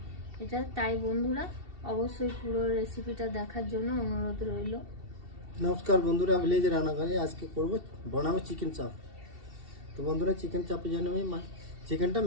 এটা। তাই বন্ধুরা অবশ্যই পুরো রেসিপিটা দেখার জন্য অনুরোধ রইল। নমস্কার বন্ধুরা, ভিলেজ রান্নাঘরে আজকে বানাবো চিকেন চাপ। তো বন্ধুরা, চিকেন চাপের জন্য আমি চিকেনটা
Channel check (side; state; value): left; late; 2.7 ms